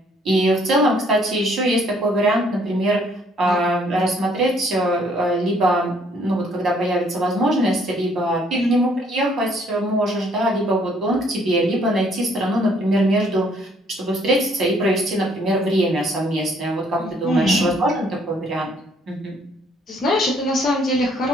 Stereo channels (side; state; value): both; normal; correlation 0.64